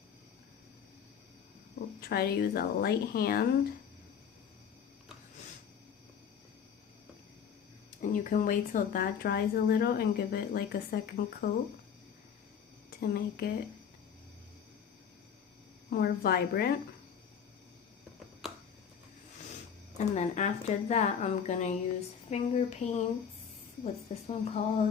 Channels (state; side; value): quieter; right; 7.6 dB